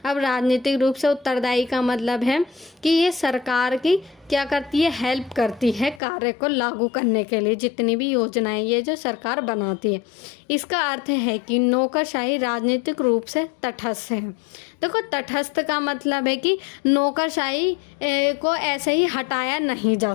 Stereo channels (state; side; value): drops out; right; at 6.0 s